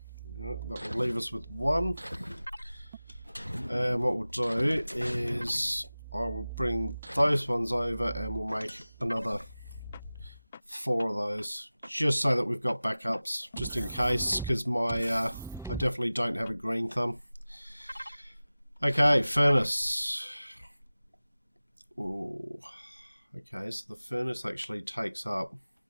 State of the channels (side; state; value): both; inverted; correlation -0.98